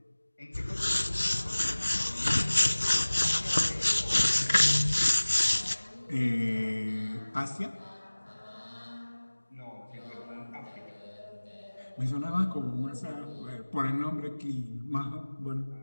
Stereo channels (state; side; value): inverted; both; correlation -1.00